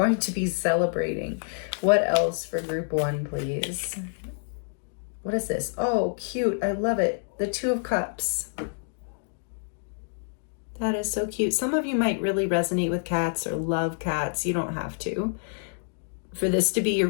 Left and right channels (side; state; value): right; silent; digital silence